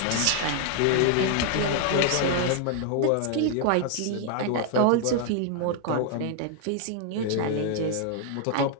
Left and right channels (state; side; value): different; both; correlation 0.00